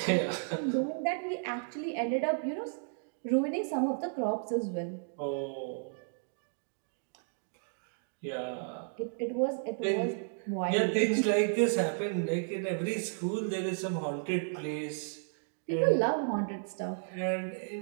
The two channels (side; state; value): left; silent; digital silence